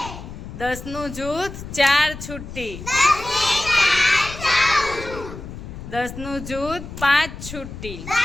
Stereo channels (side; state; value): left; noise; rumble, 11 dB below the sound